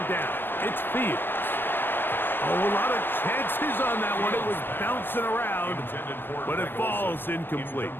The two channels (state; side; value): late; right; 0.097 ms